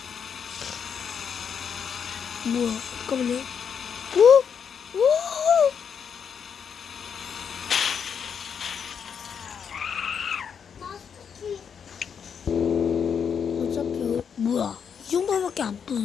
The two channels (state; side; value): quieter; right; 7.1 dB